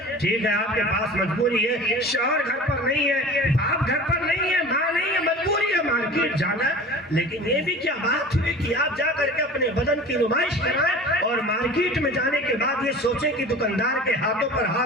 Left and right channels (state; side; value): normal; both; correlation 0.39